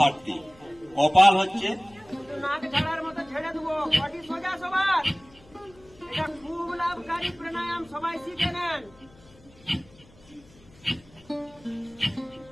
কপাল হচ্ছে নাক ঝাড়ার মতো ঝেড়ে দেবো, বডি সোজা সবার। এটা খুব লাভকারী প্রাণায়াম, সবাই শিখে নেন।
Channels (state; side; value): noise; left; hum, 26 dB below the sound